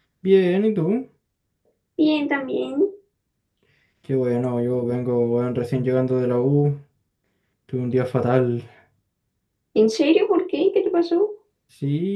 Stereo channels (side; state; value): both; identical; correlation 1.00